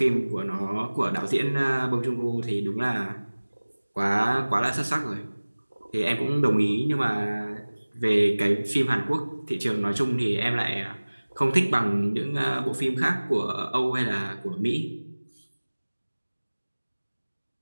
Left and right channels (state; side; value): inverted; both; correlation -1.00